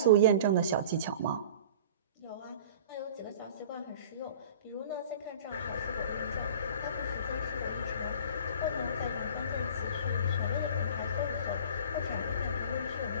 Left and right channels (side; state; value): both; inverted; correlation -0.41